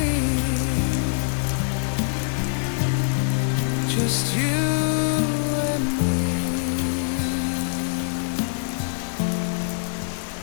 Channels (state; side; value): silent; right; digital silence